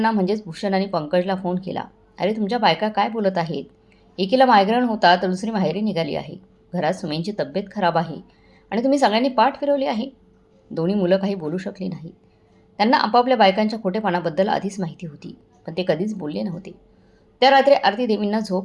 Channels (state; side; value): identical; both; correlation 1.00